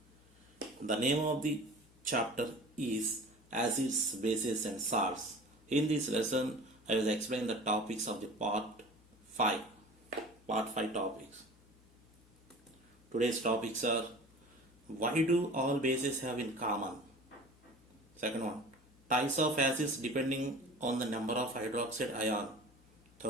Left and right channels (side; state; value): left; noise; hum, 28 dB below the sound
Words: The name of the chapter is Acids, Bases and Salts. In this lesson, I will explain the topics of the part 5. Part 5 topics. Today's topics are: why do all bases have in common? Second one, types of acids depending on the number of hydroxide ion.